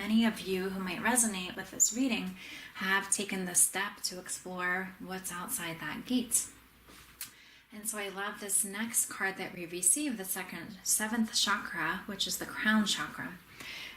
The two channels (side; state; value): both; identical; correlation 1.00